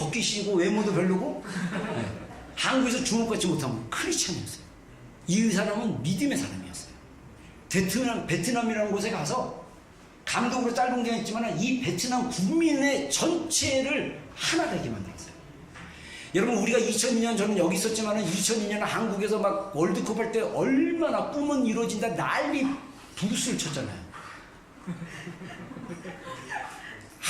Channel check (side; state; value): both; identical; correlation 1.00